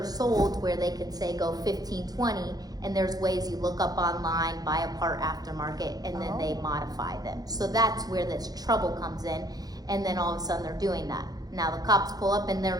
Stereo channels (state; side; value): late; left; 0.19 ms